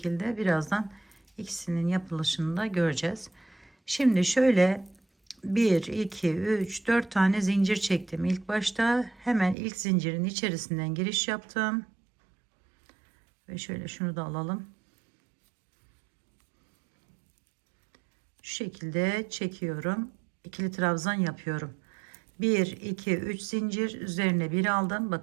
birazdan ikisinin yapılışını da göreceğiz. Şimdi şöyle 1 2 3 4 tane zincir çektim. İlk başta hemen ilk zincirin içerisinden giriş yaptım. Ve şöyle şunu da alalım. Şu şekilde çekiyorum. İkili trabzan yapıyorum. 1 2 3 zincir üzerine bir aldım.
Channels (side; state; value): left; drops out; at 9.6 s